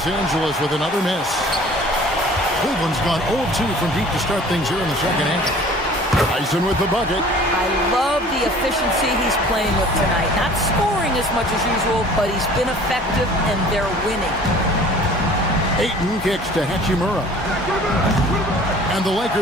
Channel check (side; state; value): both; normal; correlation 0.48